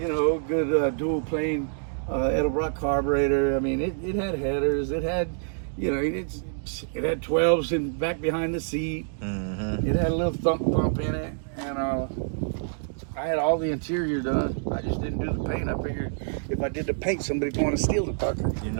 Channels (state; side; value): silent; left; digital silence